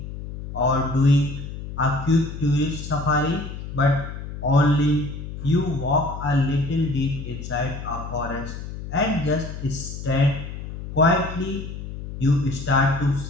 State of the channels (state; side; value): noise; left; hum, 9 dB below the sound